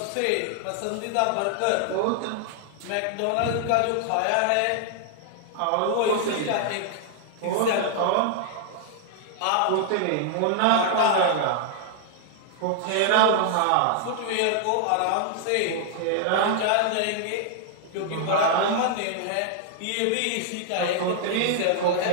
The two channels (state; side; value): different; both; correlation -0.01